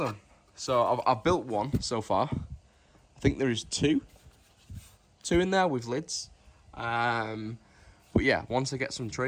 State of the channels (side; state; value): both; identical; correlation 1.00